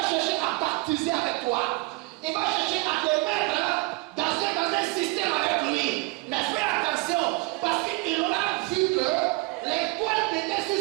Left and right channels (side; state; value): left; quieter; 24.1 dB